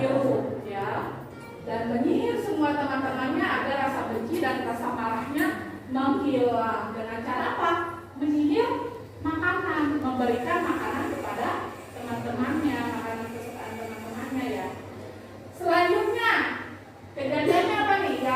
ya, dan menyihir semua teman-temannya agar rasa benci dan rasa marahnya menghilang. Dengan cara apa? Menyihir makanan, memberikan makanan kepada teman-temannya, makanan kesukaan teman-temannya, ya. Selanjutnya kejadiannya apa nih?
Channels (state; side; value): identical; both; correlation 1.00